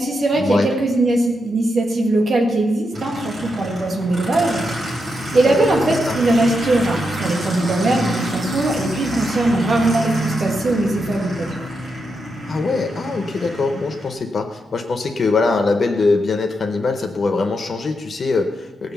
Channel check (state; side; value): normal; both; correlation 0.84